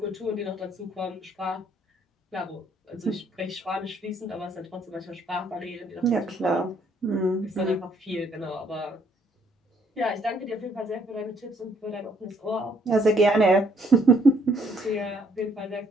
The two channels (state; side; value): normal; both; correlation 0.66